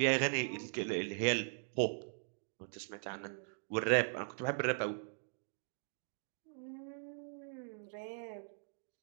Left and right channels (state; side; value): silent; left; digital silence